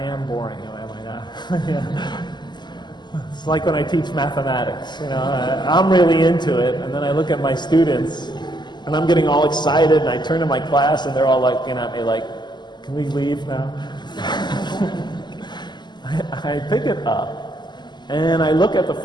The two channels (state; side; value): late; right; 0.21 ms